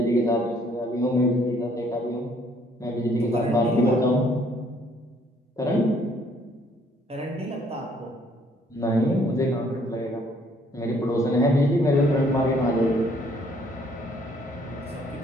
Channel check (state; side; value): normal; both; correlation 0.64